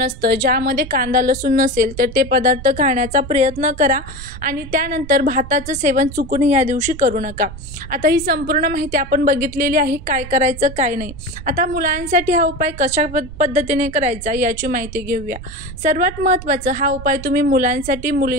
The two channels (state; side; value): noise; right; rumble, 13 dB below the sound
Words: असतं ज्यामध्ये कांदा, लसूण नसेल तर ते पदार्थ खाण्याचा प्रयत्न करा आणि त्यानंतर भाताचं सेवन चुकून या दिवशी करू नका. आता ही संपूर्ण माहिती आपण बघितलेली आहे, काय करायचं काय नाही. आता मुलांसाठी हा उपाय कशा पद्धतीने करायचा याची माहिती घेऊया. सर्वात महत्त्वाचं, हा उपाय तुम्ही मुलांसाठी